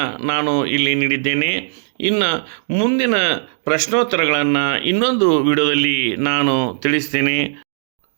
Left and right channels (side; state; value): left; silent; digital silence